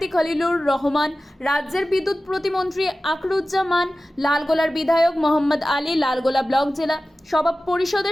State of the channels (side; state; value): both; normal; correlation 0.95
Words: খলিলুর রহমান, রাজ্যের বিদ্যুৎ প্রতিমন্ত্রী আকরুজ্জামান, লালগোলার বিধায়ক মোহাম্মদ আলী, লালগোলা ব্লক জেলা সভা